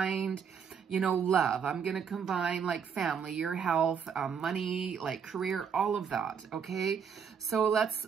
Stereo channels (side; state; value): left; quieter; 7.0 dB